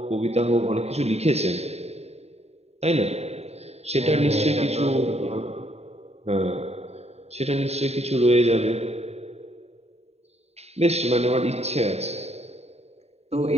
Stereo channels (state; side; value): late; left; 0.30 ms